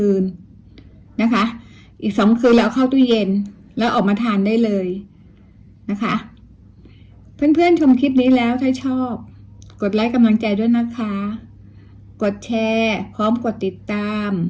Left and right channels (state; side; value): identical; both; correlation 1.00